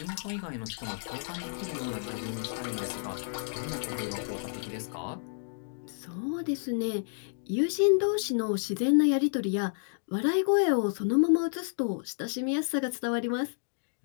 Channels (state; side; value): silent; right; digital silence